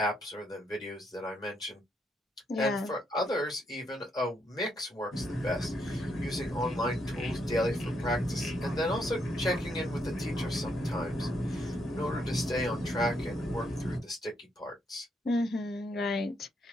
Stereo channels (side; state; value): both; normal; correlation 0.76